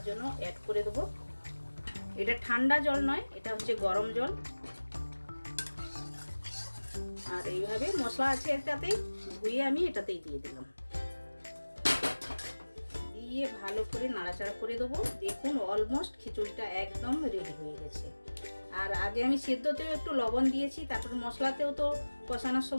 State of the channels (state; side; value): inverted; both; correlation -1.00